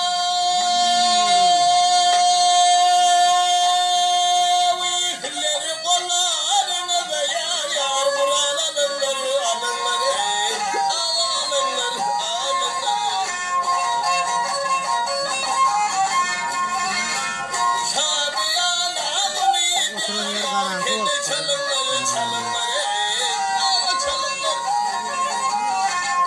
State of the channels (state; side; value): identical; both; correlation 1.00